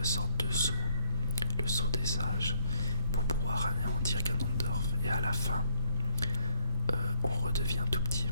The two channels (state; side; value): inverted; both; correlation -0.72